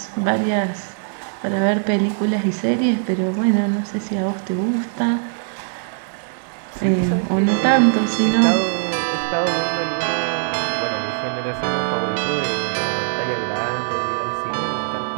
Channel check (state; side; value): silent; left; digital silence